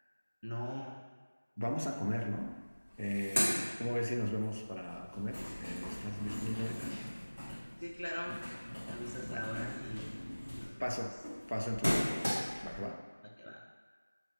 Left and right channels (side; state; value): both; inverted; correlation -1.00